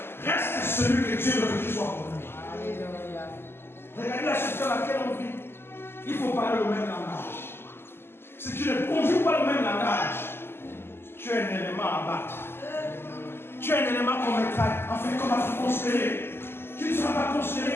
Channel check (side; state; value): right; late; 0.11 ms